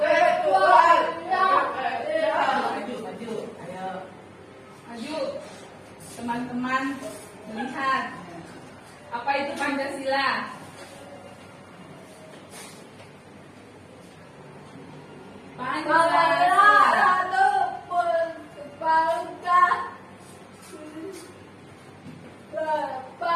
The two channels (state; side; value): identical; both; correlation 1.00